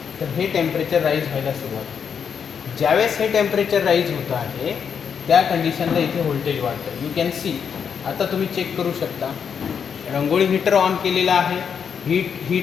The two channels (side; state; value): right; quieter; 7.1 dB